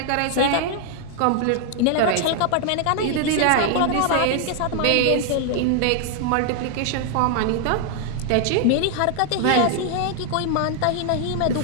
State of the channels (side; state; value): both; different; correlation 0.00